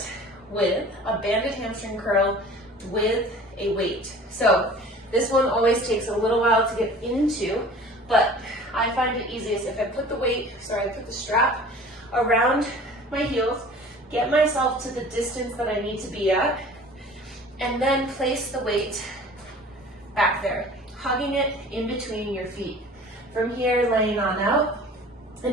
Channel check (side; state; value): both; normal; correlation 0.45